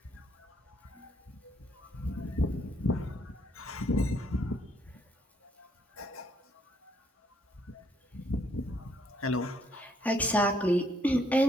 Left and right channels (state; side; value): normal; both; correlation 0.70